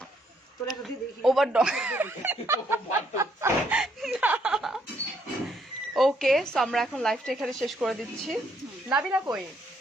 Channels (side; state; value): both; normal; correlation 0.71